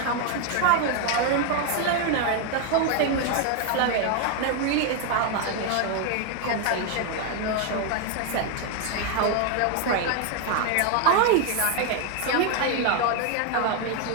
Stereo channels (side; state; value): both; different; correlation 0.01